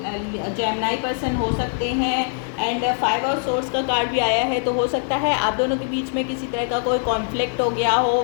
जेमिनी पर्सन हो सकते हैं। एंड 5 ऑफ सोर्ड्स का कार्ड भी आया है, तो हो सकता है आप दोनों के बीच में किसी तरह का कोई कॉन्फ्लिक्ट हो गया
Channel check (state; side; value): silent; right; 64 dB below the other